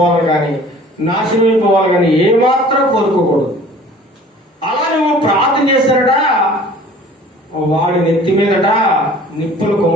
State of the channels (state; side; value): normal; both; correlation 0.48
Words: కానీ నాశనమైపోవాలి కానీ ఏమాత్రం కోరుకోకూడదు. అలా నువ్వు ప్రార్థన చేశారట, వాడి నెత్తి మీదట నిప్పులు